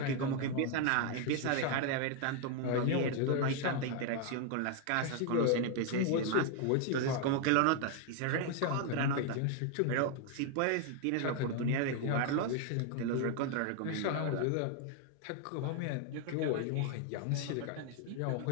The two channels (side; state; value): both; different; correlation 0.00